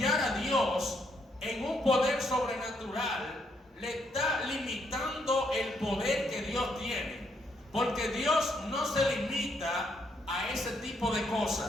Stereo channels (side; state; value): both; normal; correlation 0.74